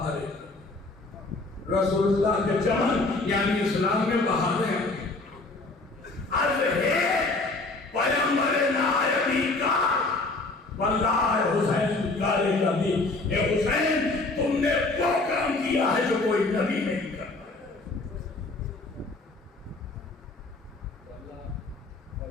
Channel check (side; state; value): right; quieter; 3.3 dB